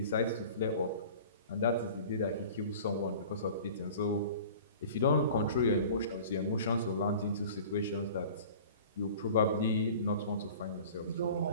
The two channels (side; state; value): both; inverted; correlation -0.43